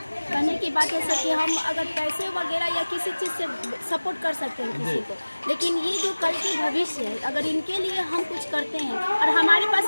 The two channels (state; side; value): inverted; both; correlation -1.00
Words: कहने की बात है सर कि हम अगर पैसे वगैरह या किसी चीज़ से सपोर्ट कर सकते हैं किसी को, लेकिन ये जो कल के भविष्य है, अगर इनके लिए हम कुछ करते हैं, और हमारे